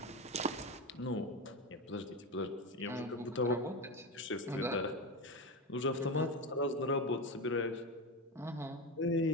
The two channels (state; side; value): normal; both; correlation 0.18